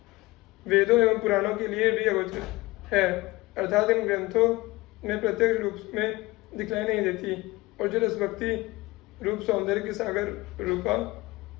वेदों एवं पुराणों के लिए भी अगोचर है, अर्थात इन ग्रंथों में प्रत्यक्ष रूप में दिखलाई नहीं देती, और जो रस भक्ति रूप सौंदर्य के सागर रूपा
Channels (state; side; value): quieter; right; 21.1 dB